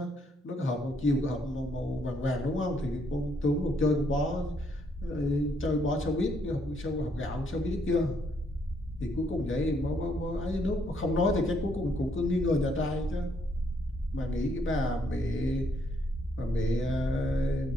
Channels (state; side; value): normal; both; correlation 0.71